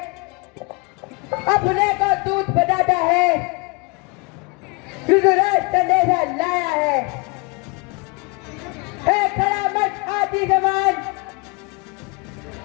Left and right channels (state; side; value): quieter; right; 28.7 dB